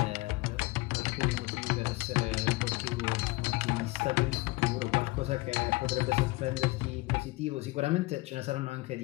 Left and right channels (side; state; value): right; quieter; 22.0 dB